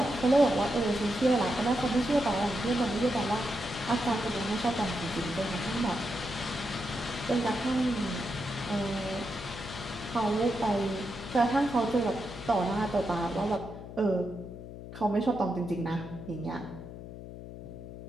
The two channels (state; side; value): noise; left; hum, 12 dB below the sound